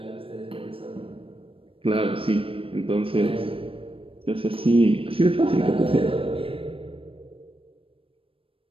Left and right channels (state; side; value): late; left; 0.26 ms